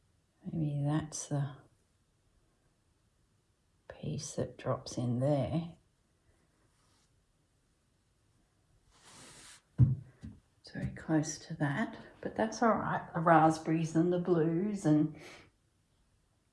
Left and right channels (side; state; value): both; identical; correlation 1.00